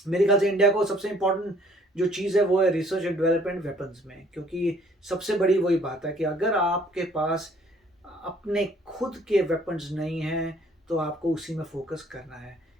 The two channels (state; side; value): normal; both; correlation 0.59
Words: मेरे ख्याल से इंडिया को सबसे इम्पोर्टेंट जो चीज़ है वो है रिसर्च एंड डेवलपमेंट वेपन्स में, क्योंकि सबसे बड़ी वही बात है कि अगर आपके पास अपने खुद के वेपन्स नहीं हैं तो आपको उसी में फोकस करना है।